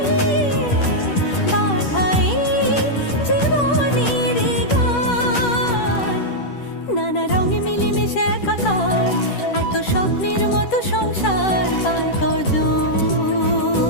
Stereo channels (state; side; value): late; right; 10 ms